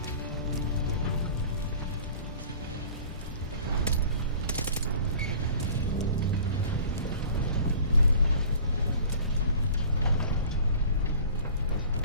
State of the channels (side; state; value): both; inverted; correlation -0.45